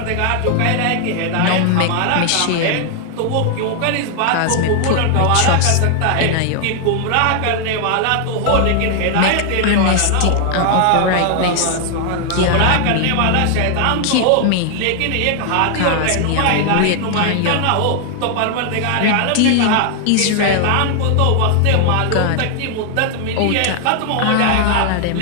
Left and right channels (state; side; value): different; both; correlation 0.00